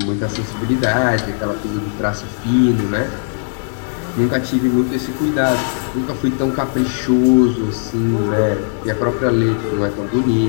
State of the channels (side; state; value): right; silent; digital silence